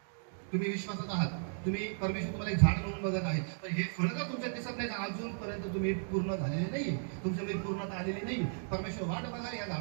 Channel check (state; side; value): silent; left; digital silence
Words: तुम्ही विश्वासात आहात, तुम्ही परमेश्वर तुम्हाला एक झाड म्हणून बघत आहे, तर हे फळ जर तुमच्या दिसत नाही तर अजूनपर्यंत तुम्ही पूर्ण झालेले नाहीये, तुमच्यामध्ये पूर्णता आलेली नाही. परमेश्वर वाट बघा या